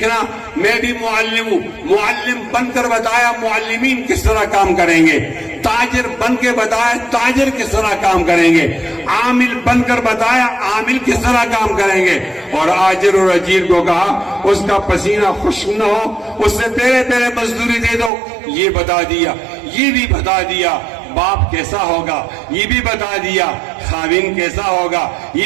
میں بھی معلم ہوں، معلم بن کر بتایا معلمین کس طرح کام کریں گے، تاجر بن کے بتایا تاجر کس طرح کام کریں گے، عامل بن کر بتایا عامل کس طرح کام کریں گے. اور آجر اور اجیر کو کہا اس کا پسینہ خشک نہ ہو، اس سے پہلے پہلے مزدوری دے دو. یہ بتا دیا. یہ بھی بتا دیا باپ کیسا ہوگا، یہ بھی بتا دیا خاوند کیسا ہوگا،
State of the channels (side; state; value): left; drops out; at 18.1 s